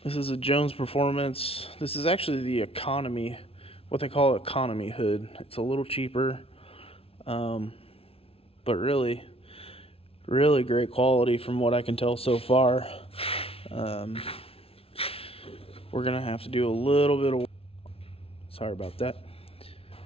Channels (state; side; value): late; right; 0.27 ms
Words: This is a Jones Performance. This is actually the economy, what they call economy hood. It's a little cheaper, but really great quality from what I can tell so far. We're gonna have to do a little bit of, sorry about that,